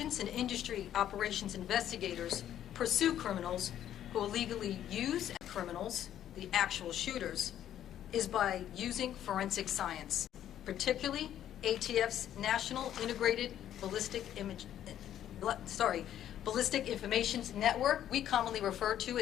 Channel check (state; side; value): quieter; right; 11.1 dB